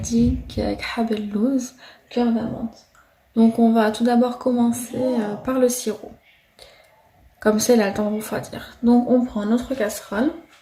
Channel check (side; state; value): both; identical; correlation 1.00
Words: khab el-louz, cœur d'amande. Donc on va tout d'abord commencer par le sirop. Comme ça, il a le temps de refroidir. Donc on prend notre casserole.